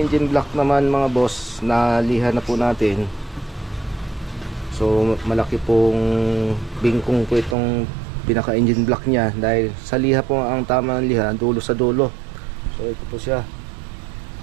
block naman mga boss, naliha na po natin. So malaki pong bingkong po itong pinaka engine block niya dahil sa liha po ang tama ng liha, dulo sa dulo. So ito po siya,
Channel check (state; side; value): drops out; left; at 7.6 s